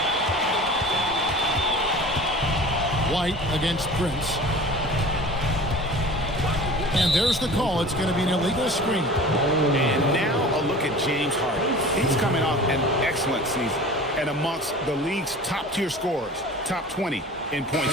White against Prince. And there's the call. It's going to be an illegal screen. And now a look at James Harden. He's coming off an excellent season and amongst the league's top-tier scorers, top 20 in points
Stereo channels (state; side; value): normal; both; correlation 0.40